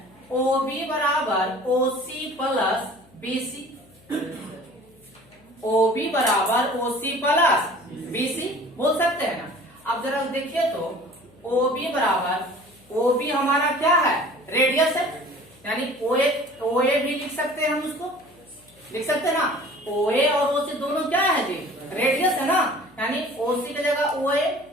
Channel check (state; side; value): noise; left; hum, 29 dB below the sound